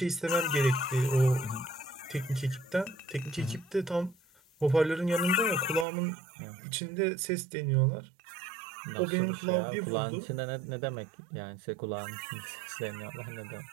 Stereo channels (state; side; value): drops out; left; at 5.9 s